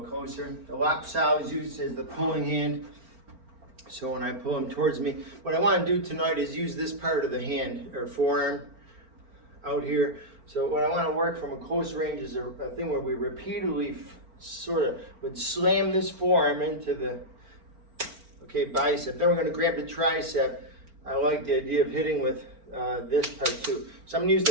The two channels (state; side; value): late; left; 4.4 ms